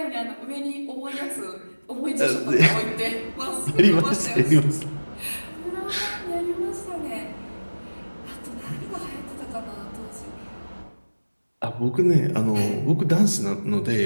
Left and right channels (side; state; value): both; inverted; correlation -1.00